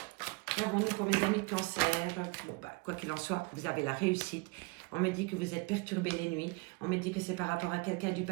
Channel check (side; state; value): left; quieter; 27.8 dB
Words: Qu'avons-nous pour mes amis cancer? Bon, quoi qu'il en soit, vous avez la réussite. On me dit que vous êtes perturbé les nuits. On me dit que c'est par rapport à quelqu'un du